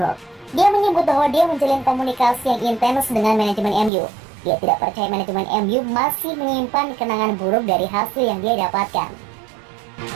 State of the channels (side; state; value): left; drops out; at 3.9 s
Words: Dia menyebut bahwa dia menjalin komunikasi yang intens dengan manajemen MU. Dia tidak percaya manajemen MU masih menyimpan kenangan buruk dari hasil yang dia dapatkan.